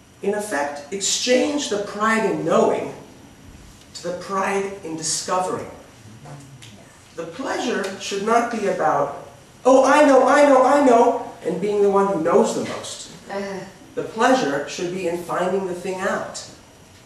In effect, exchange the pride in knowing to the pride in discovering. The pleasure should not be about, oh, I know, and being the one who knows the most. The pleasure should be in finding the thing out.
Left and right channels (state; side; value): identical; both; correlation 1.00